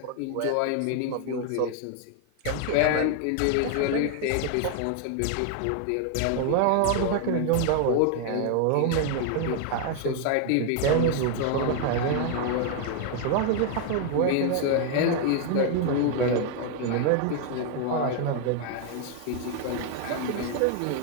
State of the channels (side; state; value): both; different; correlation 0.00